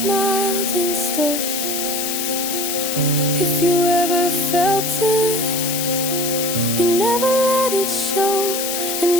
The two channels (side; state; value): left; noise; hiss, 2 dB below the sound